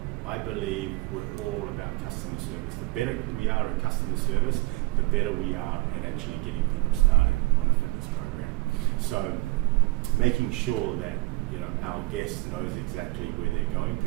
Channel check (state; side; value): quieter; left; 22.0 dB